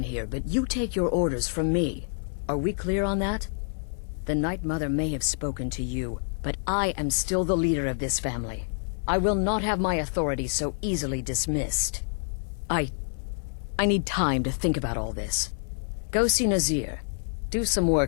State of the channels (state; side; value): silent; right; 60 dB below the other